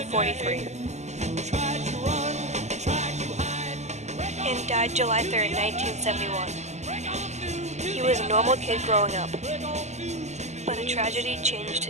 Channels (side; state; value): left; late; 0.33 ms